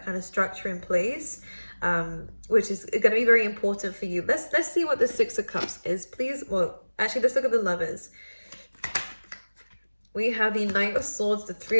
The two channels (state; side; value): inverted; both; correlation -1.00